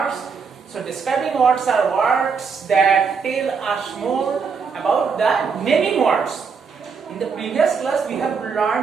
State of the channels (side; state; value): left; quieter; 5.6 dB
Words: So, describing words are words that tell us more about the naming words. In the previous class, we have